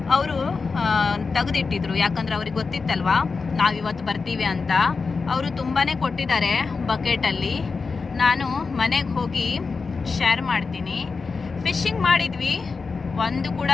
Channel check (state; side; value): quieter; right; 4.6 dB